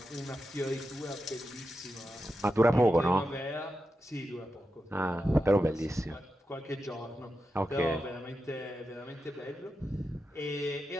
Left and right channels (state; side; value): normal; both; correlation 0.89